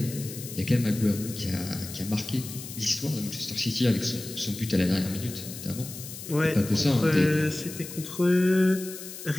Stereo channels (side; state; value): left; noise; hiss, 11 dB below the sound